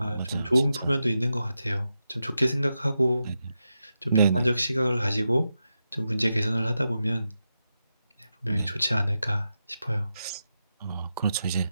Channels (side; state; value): both; inverted; correlation -0.88